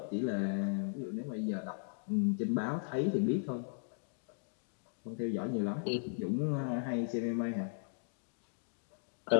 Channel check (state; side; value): silent; right; digital silence